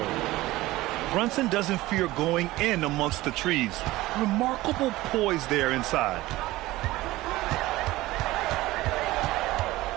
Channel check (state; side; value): quieter; left; 18.1 dB